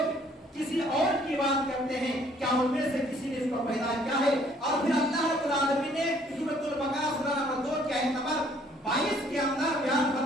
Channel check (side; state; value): both; normal; correlation 0.61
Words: किसी और की बात करते हैं, क्या उनमें से किसी ने इसको पैदा किया है? और फिर अल्लाह रब्बुल आलमीन ने सूरह बकरा सूरह नंबर 2 के आयत नंबर 22 के अंदर बयान